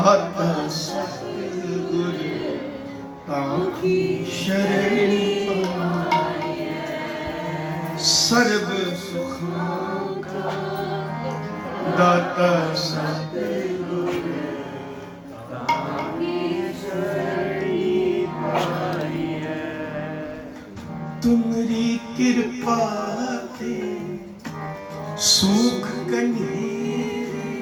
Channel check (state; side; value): identical; both; correlation 1.00